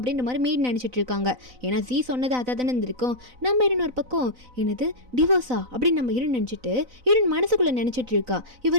மாதிரி மேடு நினச்சிட்டு இருக்காங்க. ஏன்னா ஜீ சொன்னது அதாக தானே இருந்திருக்கும். நம்ம ஹீரோன் ஒரு பக்கம் என்னது டிவோர்ஸா அப்படின்னு நம்ம ஹீரோன் நினச்சிட்டு ஹீரோன் மனசுக்குள்ளே நினச்சிட்டு இருக்கா.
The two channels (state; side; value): late; left; 4.0 ms